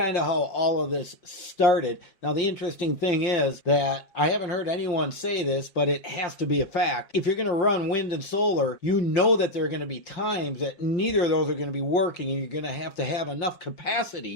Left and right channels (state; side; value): late; right; 5.7 ms